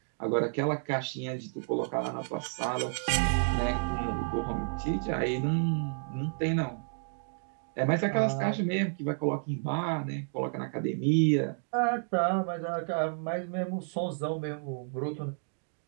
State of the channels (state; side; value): silent; left; digital silence